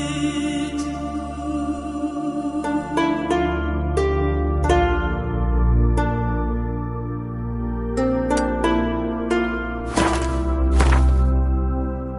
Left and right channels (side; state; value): both; identical; correlation 1.00